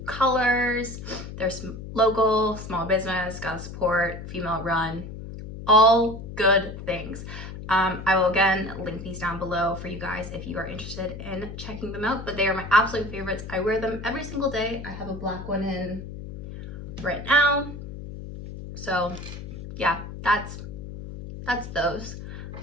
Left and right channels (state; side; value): noise; left; hum, 10 dB below the sound